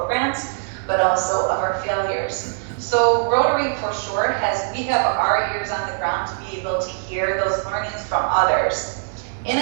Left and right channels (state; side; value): silent; left; 63 dB below the other